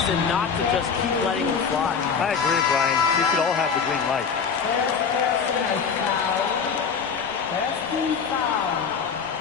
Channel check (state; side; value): quieter; right; 6.2 dB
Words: not to just keep letting them fly. I agree, Brian. We should all have the green light.